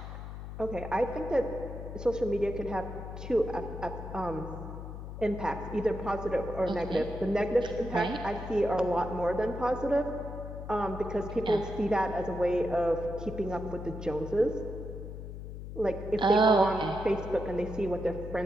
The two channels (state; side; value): noise; left; hum, 9 dB below the sound